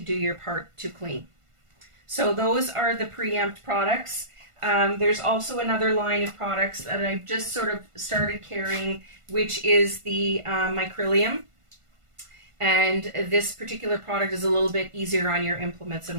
do your part to clean. So those are the Preempt products. There's also another line of products that I've just sort of started carrying, which is the Micrylium. And this particular product is a little bit easier on your implements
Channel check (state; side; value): late; left; 1.5 ms